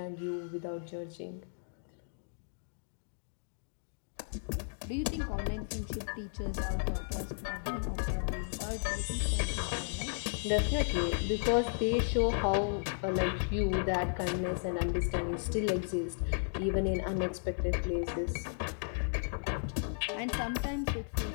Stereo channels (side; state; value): right; silent; digital silence